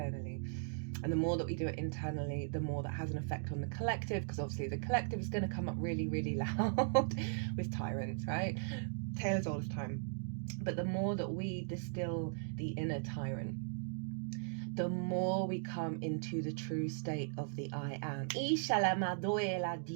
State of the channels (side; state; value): left; silent; digital silence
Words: And the more that we do it internally, the more that has an effect on the collective, because obviously the collective is going to come up really, really loud with tyrants, right? Tale as old as time. But the more that we distill the inner tyrant, the more we come into the true state of the I am.